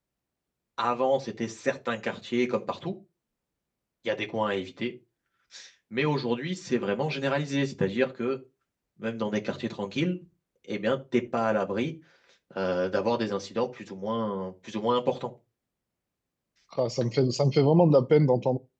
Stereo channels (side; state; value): both; identical; correlation 1.00